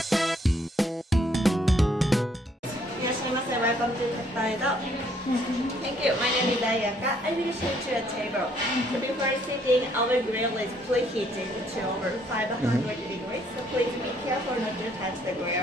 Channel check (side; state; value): both; normal; correlation 0.66